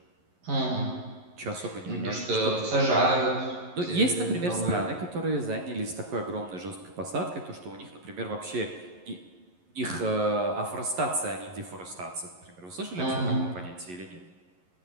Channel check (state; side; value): late; left; 11 ms